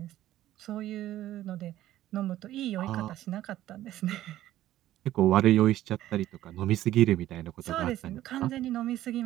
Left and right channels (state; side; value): quieter; left; 13.8 dB